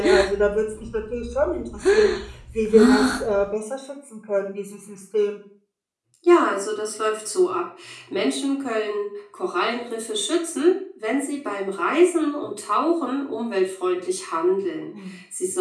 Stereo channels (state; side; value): identical; both; correlation 1.00